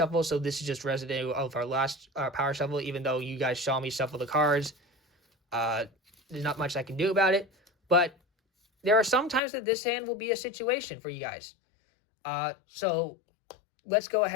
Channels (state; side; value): drops out; right; at 9.4 s